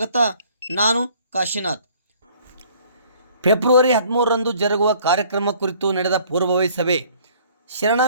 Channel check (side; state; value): both; inverted; correlation -0.57